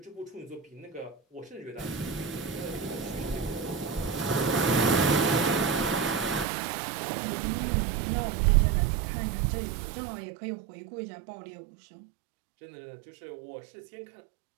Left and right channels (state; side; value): drops out; left; at 6.5 s